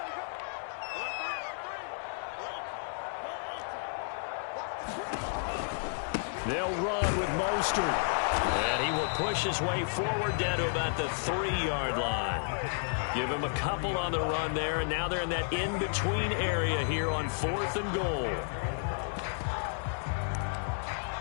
They'll run with Mostert. And he will push his way forward down to about the 3-yard line. Give him a couple on the run there, and now they're in that in-between area here on 4th and goal.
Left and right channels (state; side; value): silent; right; digital silence